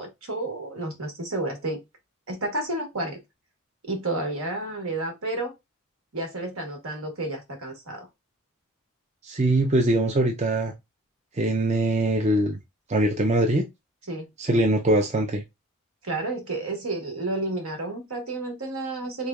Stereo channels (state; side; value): normal; both; correlation 0.40